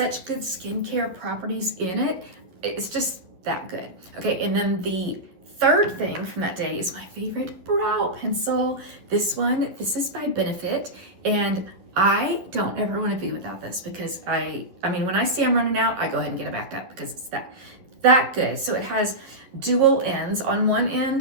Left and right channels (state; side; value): late; left; 11 ms